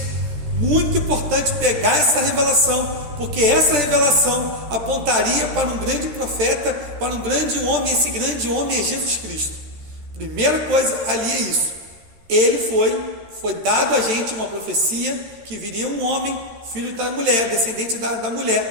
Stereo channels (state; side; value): late; left; 13 ms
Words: Muito importante pegar essa revelação, porque essa revelação apontaria para um grande profeta, para um grande homem. Esse grande homem é Jesus Cristo. Primeira coisa ali é isso. Ele foi dado a gente uma profecia que viria um homem, filho da mulher, descendente da